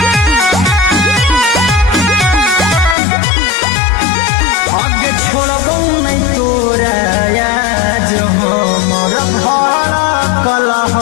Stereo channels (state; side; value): drops out; right; at 3.0 s